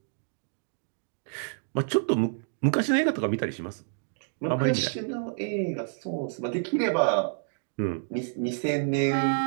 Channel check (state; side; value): silent; left; digital silence